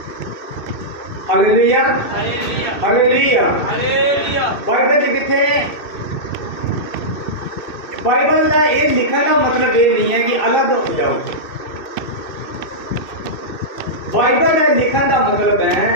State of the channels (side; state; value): right; late; 2.6 ms